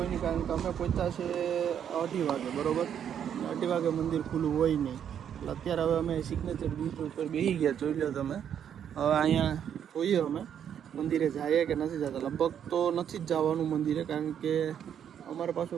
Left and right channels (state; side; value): quieter; left; 8.9 dB